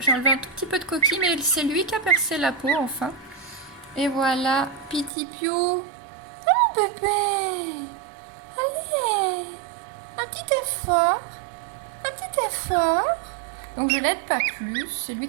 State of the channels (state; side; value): drops out; left; at 5.1 s